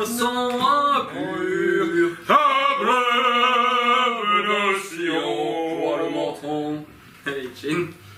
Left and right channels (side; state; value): both; identical; correlation 1.00